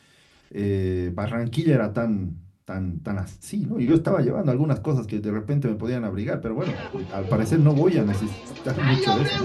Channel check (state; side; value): identical; both; correlation 1.00